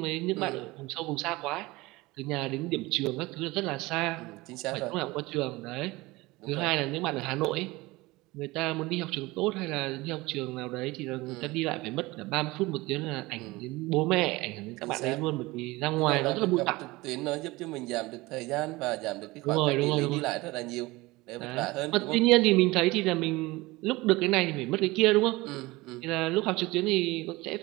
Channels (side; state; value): left; quieter; 21.2 dB